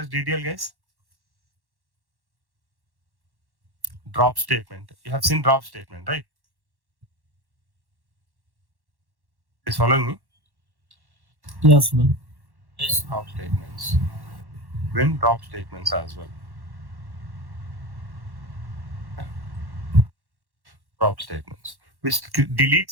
as DDL, guys. Drop statement. You have seen drop statement, right? Is following me? Yes, man. Yes. Drop statements. When drop statements as well. Drop statements, which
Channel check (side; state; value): left; late; 1.1 ms